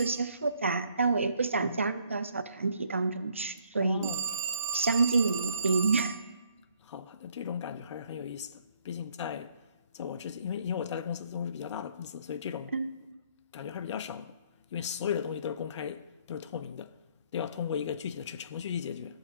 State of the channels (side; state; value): both; inverted; correlation -0.65